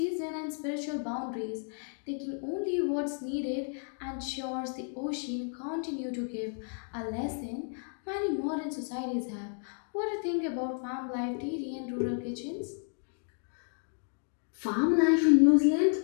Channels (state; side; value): silent; right; 56 dB below the other